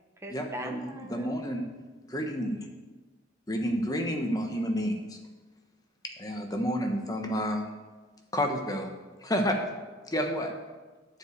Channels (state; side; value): normal; both; correlation 0.58